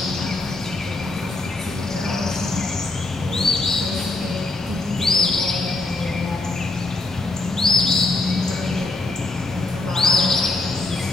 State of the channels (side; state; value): right; quieter; 3.2 dB